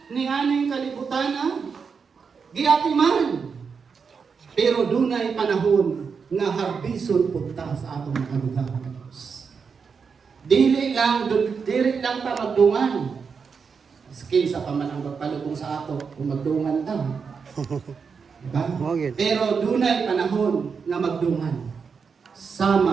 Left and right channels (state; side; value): quieter; left; 5.7 dB